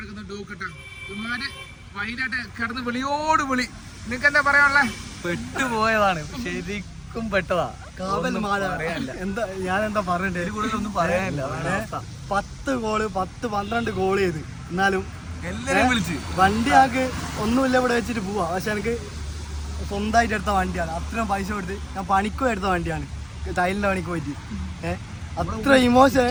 ഡൂക്ക് കേട്ടോ. ഇമാര് വൈകിട്ട് കിടന്ന് വിളിയോട് വിളി. നിനക്ക് എന്താ പറയാനുള്ളേ? പെട്ടുപോയതാണ്, ശരിക്കും പെട്ടതാ. എന്താ ഞാൻ എന്താ പറയണ്ടേ, ഒന്നും പറയാനില്ല. 10 ഗോള് 10-12 ഗോൾ ചെയ്ത് എന്നാലും എല്ലാരും വിളിച്ച് വണ്ടി ആക്ക് ഒന്നുമില്ല ഇവിടെ വെച്ചിട്ട് പോവാ. പക്ഷെ എനിക്ക് സ്വന്തമായിട്ട് എടുത്ത വണ്ടിയാണ്. അത്രയും പൈസ കൊടുത്ത് ഞാൻ പണിക്കും എടുത്ത വണ്ടിയാണ്, ടൈലിന്റെ പണിക്ക് പോയിട്ട്. അത്ര ഇമോഷൻ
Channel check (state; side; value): identical; both; correlation 1.00